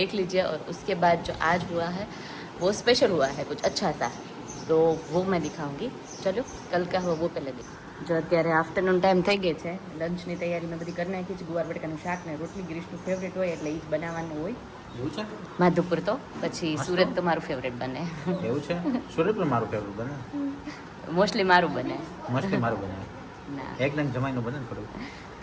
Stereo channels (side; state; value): both; identical; correlation 1.00